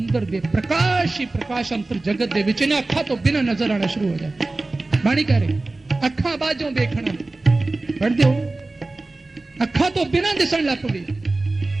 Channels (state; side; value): quieter; left; 3.1 dB